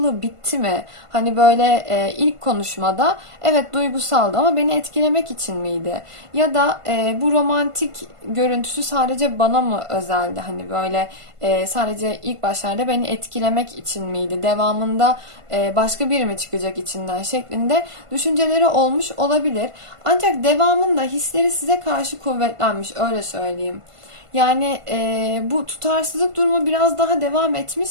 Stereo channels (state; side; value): late; left; 1.5 ms